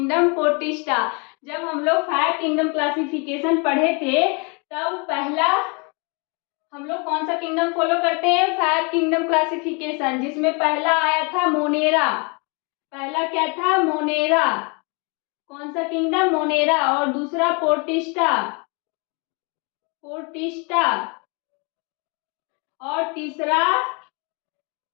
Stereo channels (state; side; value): quieter; right; 32.7 dB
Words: protista. जब हम लोग 5 किंगडम क्लासिफिकेशन पढ़े थे तब पहला हम लोग कौन सा किंगडम फॉलो करते हैं? 5 किंगडम क्लासिफिकेशन, जिसमें पहला आया था मोनेरा। पहला क्या था? मोनेरा। कौन सा किंगडम? मोनेरा। और दूसरा पोर्टिस्टा। पोर्टिस्टा। और तीसरा